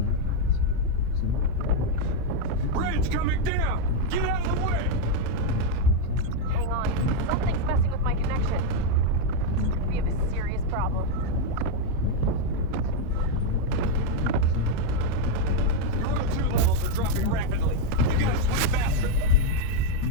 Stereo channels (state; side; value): different; both; correlation 0.01